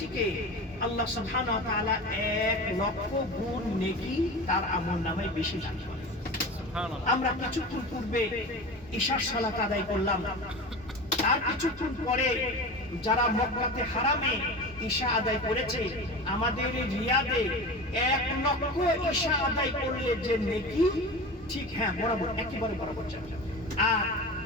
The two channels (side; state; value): both; normal; correlation 0.31